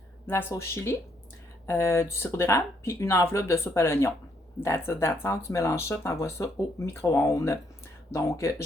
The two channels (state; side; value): normal; both; correlation 0.72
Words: de la sauce chili, du sirop d'érable, puis une enveloppe de soupe à l'oignon. That's it, that's all. Tu mélanges ça, tu envoies ça au micro-ondes. Donc,